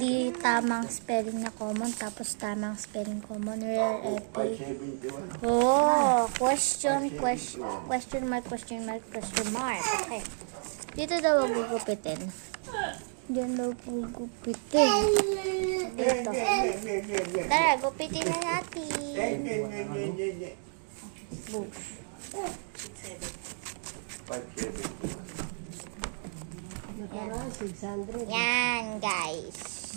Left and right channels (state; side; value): silent; left; 57 dB below the other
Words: tamang spelling na common, tapos tamang spelling common, rare, epic. Oh, question mark. Okay. Dito daw gugupitin. Diyan daw gugupitin. Dito. Tara, gupitin na natin. Boom. 600. Yan, guys.